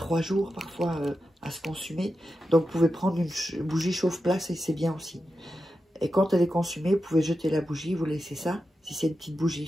jours parfois à se consumer. Donc, vous pouvez prendre une bougie chauffe-place et c'est bien aussi. Et quand elle est consumée, vous pouvez jeter la bougie, vous laissez ça, si c'est une petite bougie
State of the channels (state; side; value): normal; both; correlation 0.90